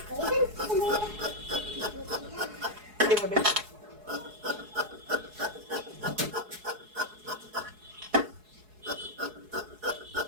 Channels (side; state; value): left; late; 4.7 ms